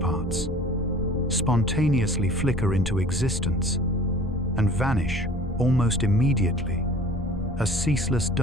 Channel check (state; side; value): noise; left; rumble, 10 dB below the sound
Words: spontaneously flicker into existence and vanish almost immediately, a ceaseless